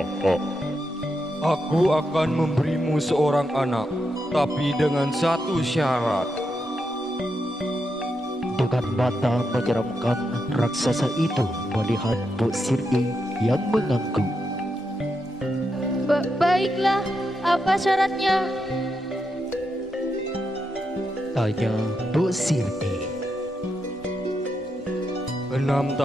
Aku akan memberimu seorang anak, tapi dengan satu syarat. Dengan mata menyeramkan, raksasa itu melihat Mbok Sirni yang mengangguk. Baiklah, apa syaratnya? Tanya Mbok Sirni. 6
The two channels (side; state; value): both; normal; correlation 0.84